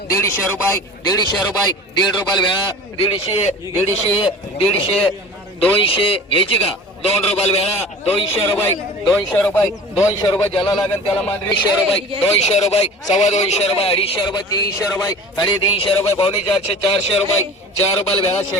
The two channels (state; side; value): normal; both; correlation 0.39